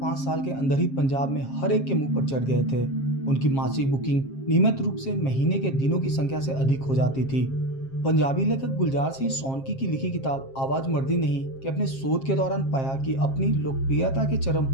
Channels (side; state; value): right; late; 7.5 ms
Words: साल के अंदर ही पंजाब में हर एक के मुंह पर चढ़ गए थे। उनकी मासिक बुकिंग नियमित रूप से महीने के दिनों की संख्या से अधिक हो जाती थी। पंजाबी लेखक गुलजार सिंह सोनकी की लिखी किताब आवाज मर्दी नहीं कि अपने शोध के दौरान पाया कि अपनी लोकप्रियता के चरम